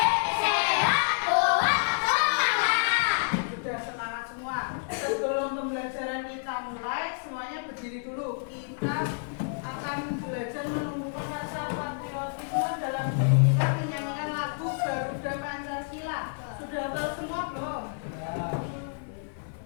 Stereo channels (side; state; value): right; silent; 59 dB below the other